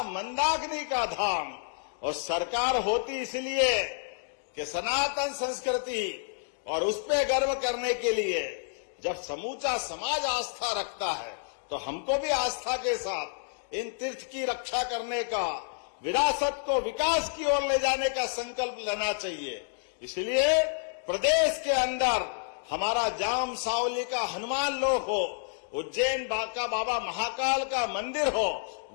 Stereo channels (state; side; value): silent; right; digital silence